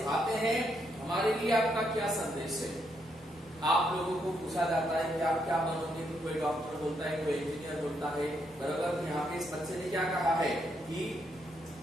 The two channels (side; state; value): both; normal; correlation 0.77